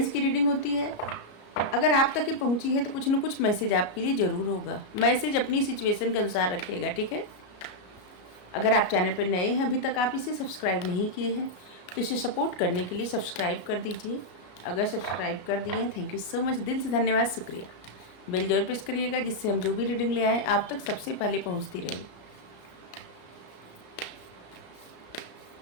की रीडिंग होती है। अगर आप तक ये पहुंची है तो कुछ न कुछ मैसेज आपके लिए ज़रूर होगा। मैसेज अपनी सिचुएशन के अनुसार रखिएगा, ठीक है। अगर आप चैनल पर नए हैं, अभी तक आप इसे सब्सक्राइब नहीं किए हैं तो इसे सपोर्ट करने के लिए सब्सक्राइब कर दीजिए। अगर सब्सक्राइब कर दिए हैं, थैंक यू सो मच, दिल से धन्यवाद, शुक्रिया। बेल जरूर प्रेस करिएगा जिससे हम जो भी रीडिंग ले आए आप तक सबसे पहले पहुंचती रहे।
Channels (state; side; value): late; right; 34 ms